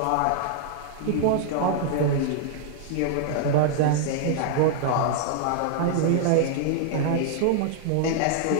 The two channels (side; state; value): both; different; correlation -0.01